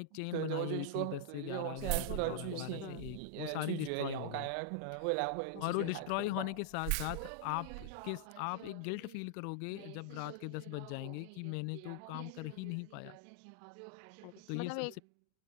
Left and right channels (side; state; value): both; different; correlation -0.01